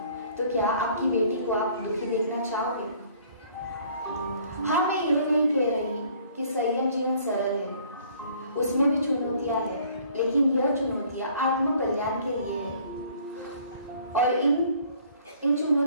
तो क्या आपकी बेटी को आप दुखी देखना चाहोगे? हाँ, मैं ये नहीं कह रही कि संयम जीवन सरल है, उसमें भी चुनौतियां हैं, लेकिन यह चुनौतियां आत्म कल्याण के लिए है। और इन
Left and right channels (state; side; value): inverted; both; correlation -0.57